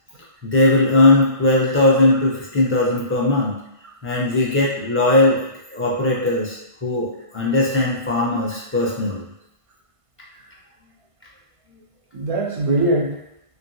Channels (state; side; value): late; left; 1.5 ms